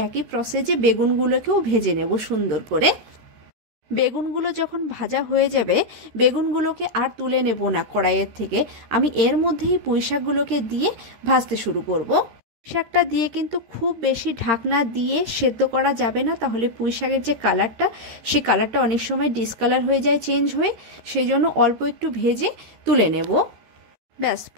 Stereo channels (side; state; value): left; late; 13 ms